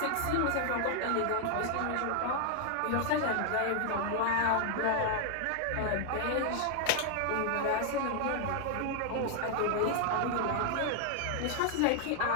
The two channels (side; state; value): both; different; correlation 0.00